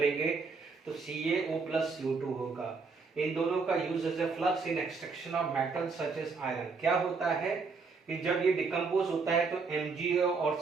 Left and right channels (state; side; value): quieter; left; 4.6 dB